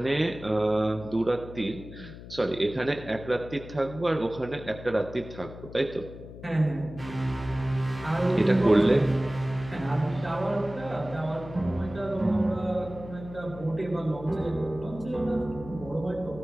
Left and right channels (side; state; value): left; noise; hum, 14 dB below the sound